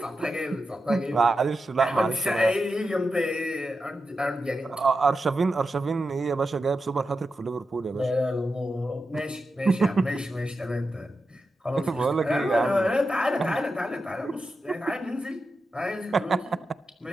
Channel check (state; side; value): normal; both; correlation 0.89